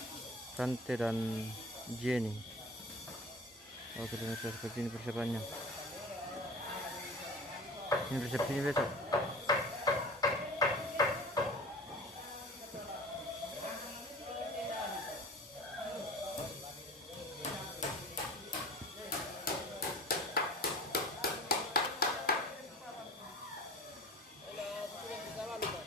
Rante dan Jenny. Oke pemirsa, seperti ini persiapannya. Ini resepsinya besok.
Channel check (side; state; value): both; normal; correlation 0.40